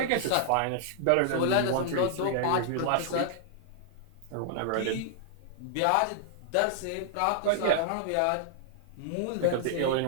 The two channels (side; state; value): both; different; correlation -0.01